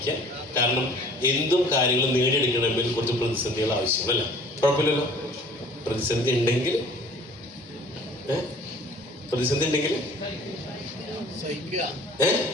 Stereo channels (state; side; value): normal; both; correlation 0.50